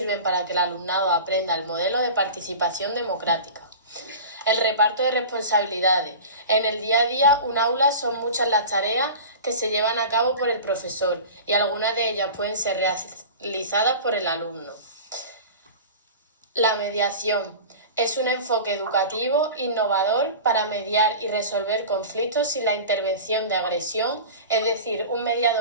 para que el alumnado aprenda el modelo de participación democrática. El reparto de responsabilidades. En el día a día, un aula son muchas las tareas que se llevan a cabo por el profesor y algunas de ellas pueden ser realizadas por el alumno. La mediación. Es un enfoque educativo innovador para mediar y resolver conflictos sin la intervención de agresión, es decir, un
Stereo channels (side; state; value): both; inverted; correlation -0.34